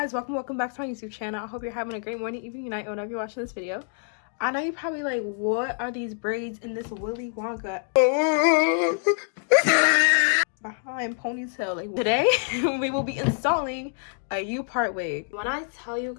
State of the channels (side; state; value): right; silent; 60 dB below the other